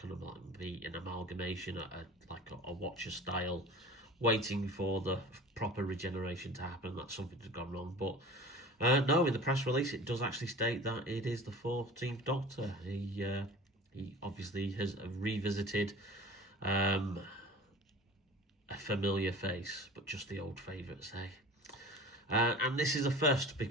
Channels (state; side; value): normal; both; correlation 0.40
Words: of like be an amalgamation, like a Watcher style, waiting for the proper regeneration to happen. That something had gone wrong. But no, in the press release it does actually state that it is the 14th Doctor. He obviously has revisited a familiar face, but just the old favourites, eh? And this is a first